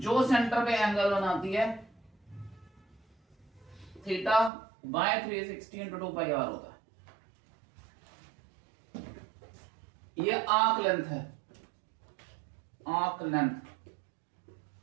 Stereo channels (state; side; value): drops out; left; at 4.5 s